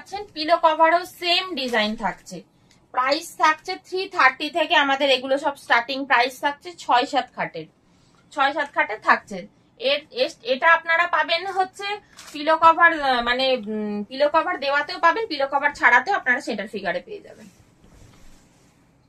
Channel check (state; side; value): identical; both; correlation 1.00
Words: পিলো কভারও সেম ডিজাইন থাকছে। প্রাইস থাকছে 330 থেকে, আমাদের এগুলো সব স্টার্টিং প্রাইস থাকছে 6-7 খাটের, 6-7 খাটের থাকছে। এটা আপনারা পাবেন হচ্ছে পিলো কভার, মানে পিলো কভার দেওয়াতেও পাবেন, পিলো কভার ছাড়াতেও আপনারা সেটার ফিগারে পেয়ে যাবেন।